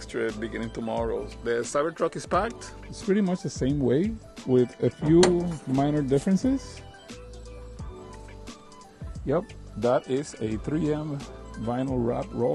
trip beginning tomorrow. The Cybertruck is packed. It's pretty much the same way with a few minor differences. Yep, that is a 3M vinyl wrap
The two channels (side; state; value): both; identical; correlation 1.00